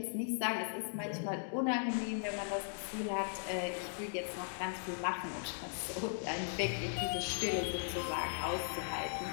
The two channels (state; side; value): silent; right; digital silence